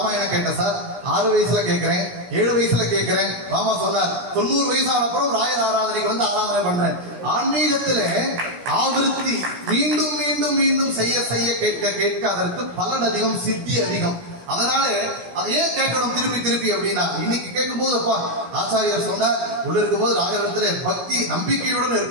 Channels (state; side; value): late; left; 17 ms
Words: கேட்டேன் சார், 6 வயசுல கேட்கிறேன், 7 வயசுல கேட்கிறேன். மாமா சொன்னார் 90 வயசான அப்புறம் ராயர் ஆராதனைக்கு வந்து ஆராதனை பண்றேன். ஆன்மீகத்துல ஆவிருத்தி மீண்டும் மீண்டும் மீண்டும் செய்ய செய்ய கேட்க கேட்க அதற்கு பலன் அதிகம், சித்தி அதிகம். அதனால அதை ஏன் கேட்கணும் திருப்பி திருப்பி அப்படின்னா, இன்னைக்கு கேட்கும் போது அப்பா ஆச்சாரியர் சொன்னார் உள்ள இருக்கும் போது ராகவத்துல பக்தி நம்பிக்கையுடன்